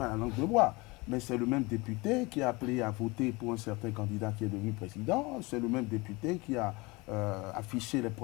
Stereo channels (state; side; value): quieter; right; 24.7 dB